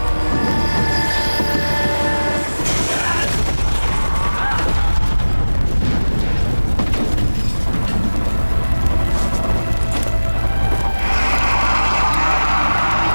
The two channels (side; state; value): both; inverted; correlation -1.00